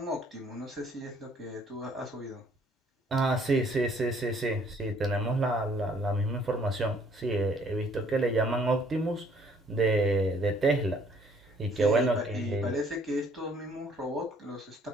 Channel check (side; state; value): both; normal; correlation 0.61